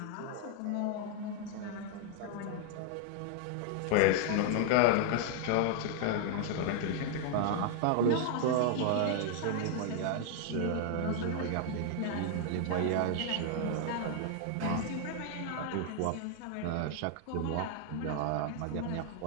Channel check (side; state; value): both; different; correlation 0.00